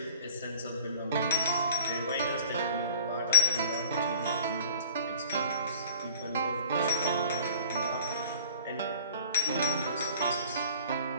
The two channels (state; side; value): inverted; both; correlation -0.49